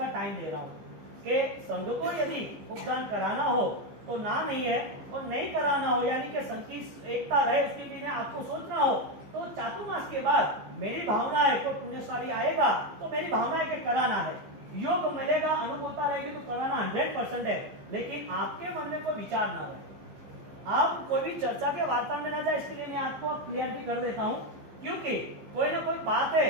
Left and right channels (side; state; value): left; late; 15 ms